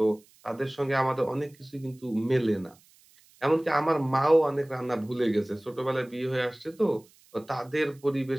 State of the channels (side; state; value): right; noise; hiss, 29 dB below the sound